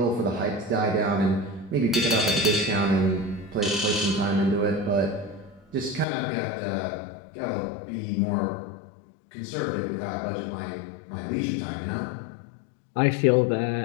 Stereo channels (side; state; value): right; drops out; at 6.1 s